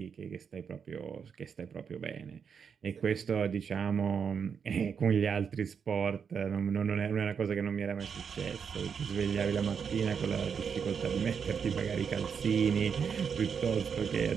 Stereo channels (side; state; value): left; quieter; 6.7 dB